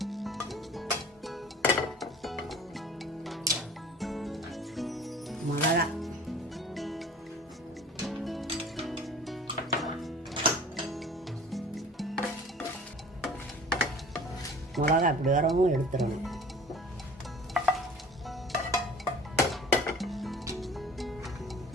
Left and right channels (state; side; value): normal; both; correlation 0.44